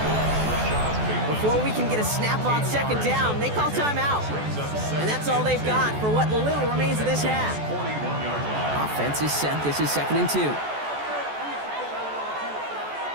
Before we can get a snap on 2nd down, they call timeout. And that's all they've got for what little remains of this half. Offense is set. This is 2nd and 2.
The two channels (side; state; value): left; late; 14 ms